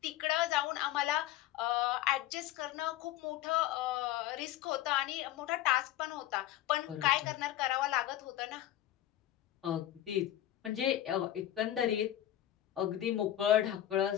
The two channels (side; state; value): right; quieter; 13.0 dB